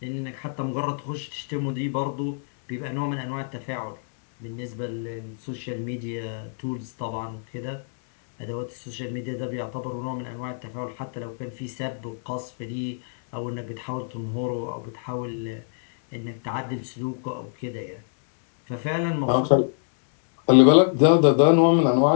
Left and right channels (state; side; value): silent; right; 61 dB below the other